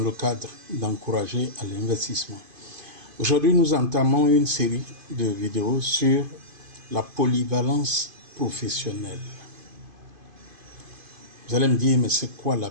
cadre d'encourager à l'investissement. Aujourd'hui, nous entamons une série de vidéos sur la polyvalence professionnelle. Vous allez me dire, mais c'est quoi la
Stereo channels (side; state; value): left; late; 2.5 ms